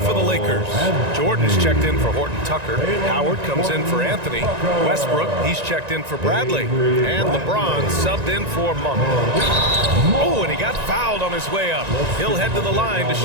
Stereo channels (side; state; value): left; late; 1.9 ms